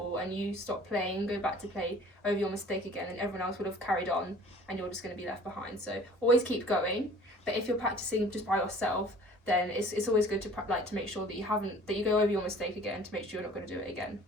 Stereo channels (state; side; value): normal; both; correlation 0.49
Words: and you stop playing and go back to play over your mistake again, then everyone else would have carried on and you're just going to be left behind. So always keep going. But if you're practicing just by yourself, then it's always good to make sure that you go over your mistake again to make sure you're not going to do it again.